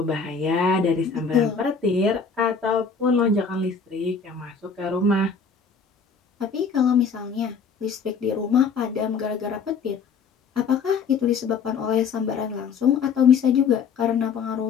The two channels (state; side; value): quieter; right; 5.6 dB